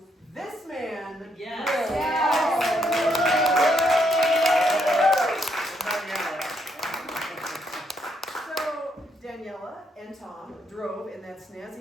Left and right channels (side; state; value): both; normal; correlation 0.75